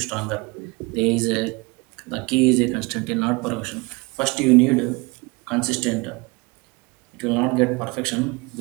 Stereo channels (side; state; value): left; quieter; 26.5 dB